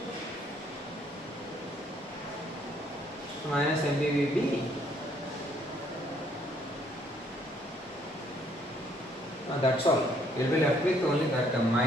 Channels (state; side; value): normal; both; correlation 0.66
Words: Minus mb vb. That's all. You will be left with only that term,